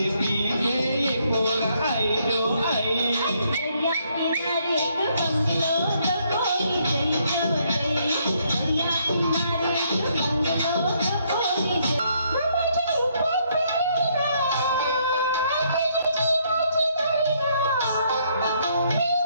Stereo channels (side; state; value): both; inverted; correlation -0.71